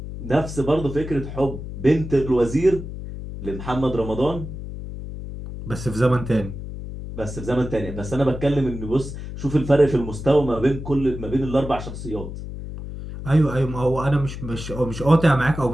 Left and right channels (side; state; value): left; noise; hum, 9 dB below the sound